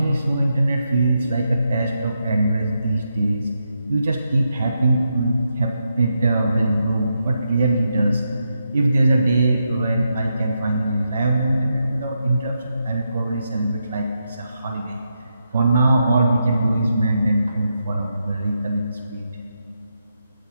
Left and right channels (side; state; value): both; inverted; correlation -0.84